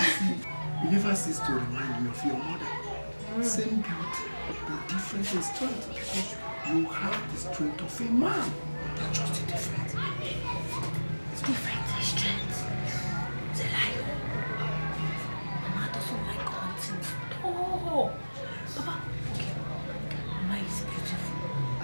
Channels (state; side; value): inverted; both; correlation -1.00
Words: You never cease to remind me of your mother. Same beauty, but different in strength, because you have the strength of a man. That's just different. It's different in strength. It's a lie. Mama doesn't like hunting. Oh, Papa, okay. Mama is beautiful.